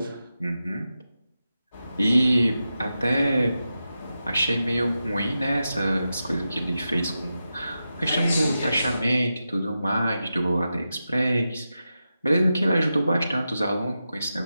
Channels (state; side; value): inverted; both; correlation -0.90